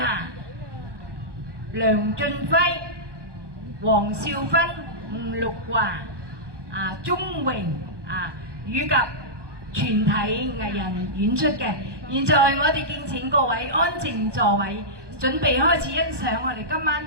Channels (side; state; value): left; late; 1.2 ms